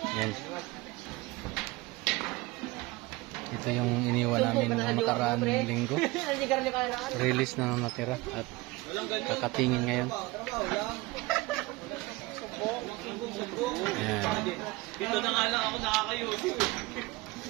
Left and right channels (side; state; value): left; quieter; 21.7 dB